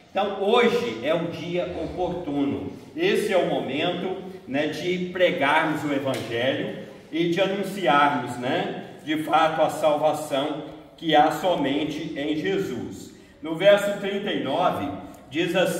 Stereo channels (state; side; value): identical; both; correlation 1.00